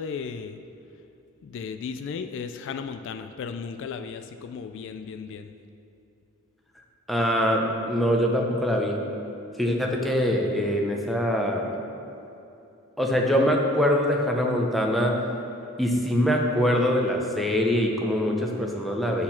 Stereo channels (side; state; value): both; normal; correlation 0.57